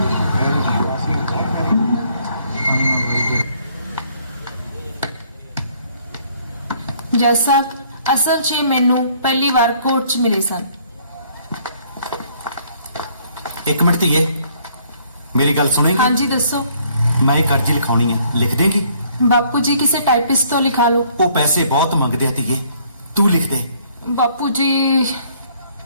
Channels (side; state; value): both; inverted; correlation -0.63